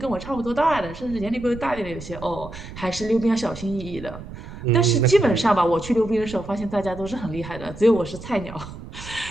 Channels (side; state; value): right; noise; rumble, 13 dB below the sound